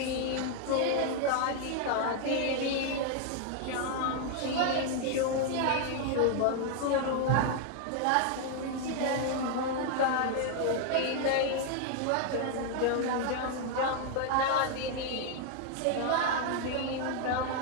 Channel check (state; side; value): different; both; correlation 0.00